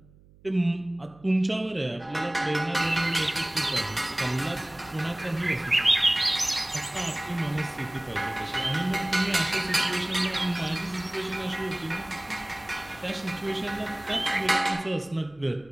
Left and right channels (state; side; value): noise; right; hum, 26 dB below the sound